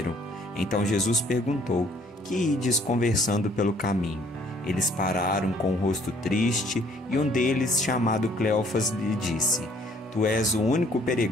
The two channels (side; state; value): both; normal; correlation 0.61